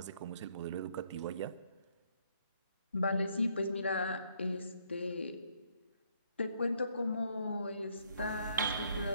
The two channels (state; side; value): inverted; both; correlation -0.69